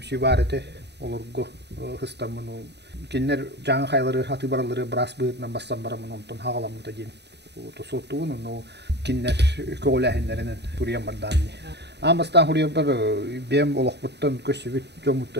бар эте олорго хыстамын кинер жаңа хайлары хаты баралары брас быытынан бассан барамын онтон хагаламыта ден тосотуун но кинер колахиннеринен турьян барданни амастан хурья бар бем олохбуттан көсүбүт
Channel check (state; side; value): late; left; 0.49 ms